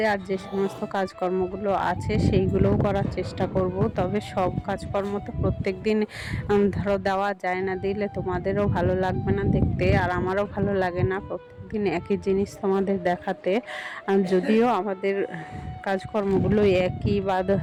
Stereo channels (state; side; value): identical; both; correlation 1.00